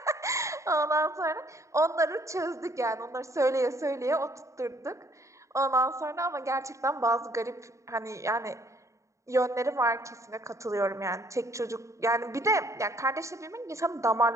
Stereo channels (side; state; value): left; late; 0.15 ms